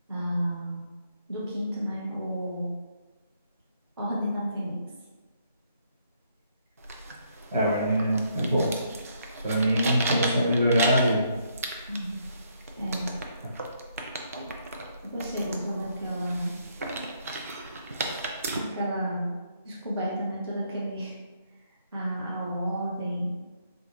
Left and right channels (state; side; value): inverted; both; correlation -0.72